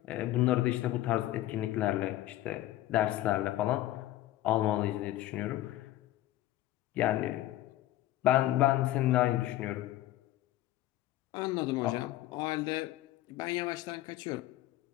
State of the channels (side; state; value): right; quieter; 15.0 dB